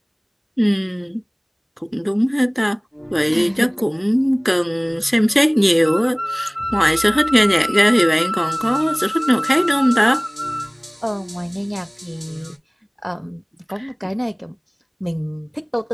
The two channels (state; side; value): identical; both; correlation 1.00